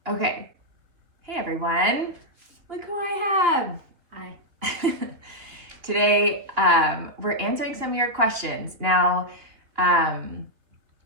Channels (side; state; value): left; late; 3.0 ms